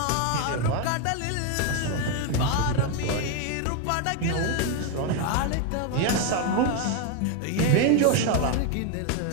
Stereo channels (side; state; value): both; different; correlation 0.01